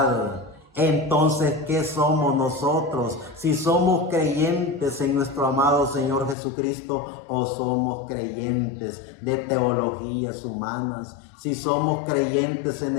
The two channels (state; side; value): drops out; right; at 6.4 s